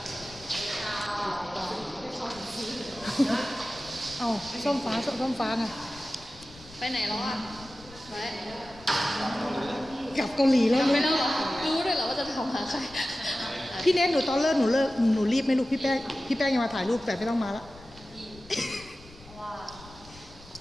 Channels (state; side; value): noise; left; rumble, 21 dB below the sound